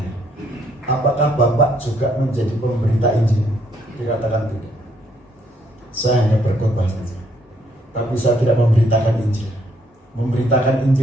apakah Bapak juga menjadi pemberita Injil? Dikatakan tidak. Saya hanya berkhotbah saja, tapi saya tidak memberitakan Injil. Memberitakan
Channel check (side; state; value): both; normal; correlation 0.70